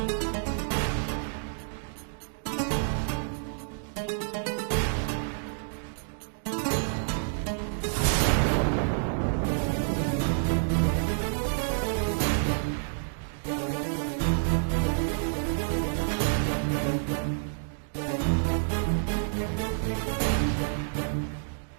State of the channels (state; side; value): silent; left; digital silence